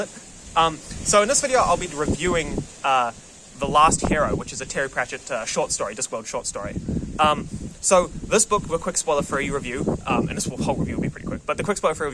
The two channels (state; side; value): identical; both; correlation 1.00